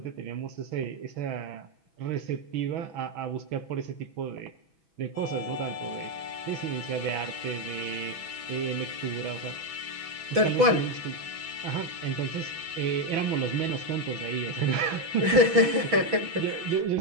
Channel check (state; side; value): late; left; 6.1 ms